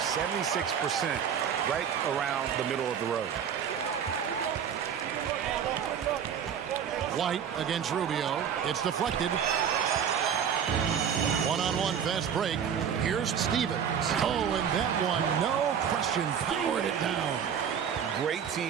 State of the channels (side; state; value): left; quieter; 8.0 dB